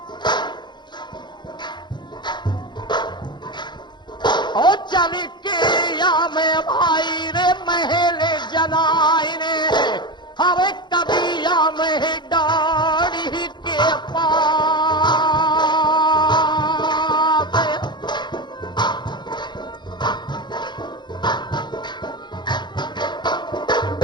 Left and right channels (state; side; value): late; right; 0.22 ms